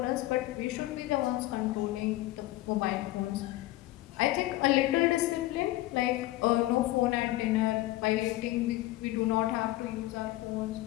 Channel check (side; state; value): right; quieter; 16.9 dB